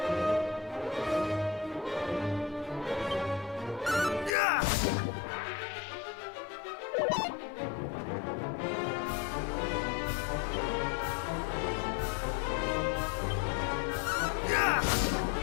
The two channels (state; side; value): drops out; right; at 4.4 s